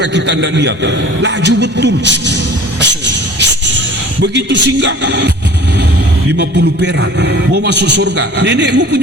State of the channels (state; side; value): normal; both; correlation 0.46